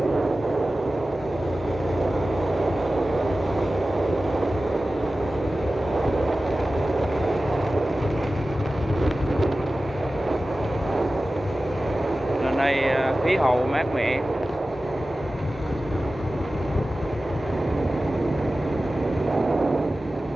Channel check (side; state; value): both; normal; correlation 0.95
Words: Lên đây khí hậu mát mẻ.